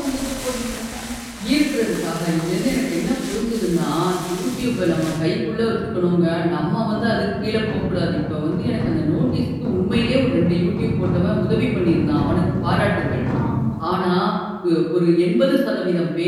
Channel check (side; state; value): both; identical; correlation 1.00